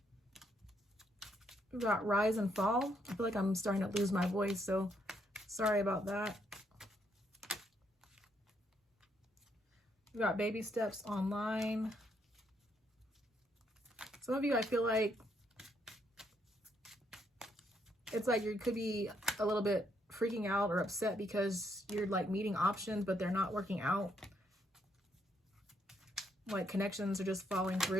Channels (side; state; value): both; normal; correlation 0.74